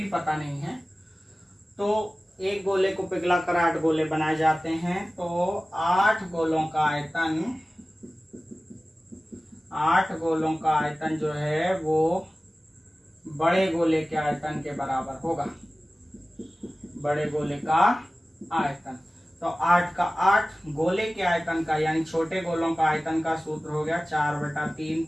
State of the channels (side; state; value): both; normal; correlation 0.97